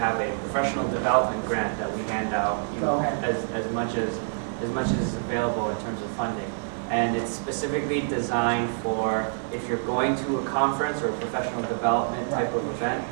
a professional development grant that we hand out, you know, as much as is available in terms of funding. And it's specifically designed for if you're going to a conference or a professional development type of event,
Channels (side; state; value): left; silent; 60 dB below the other